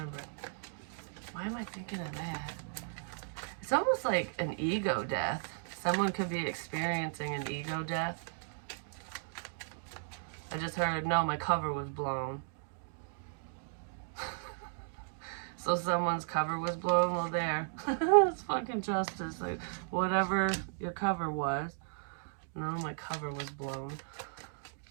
Why am I thinking of that? It's almost like an ego death. Someone could be experiencing an ego death. I just heard, no, my cover was blown. So someone's cover was blown? Well, there. It's fucking justice. Like, whatever your cover was. No, my cover was blown.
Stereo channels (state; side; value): silent; left; digital silence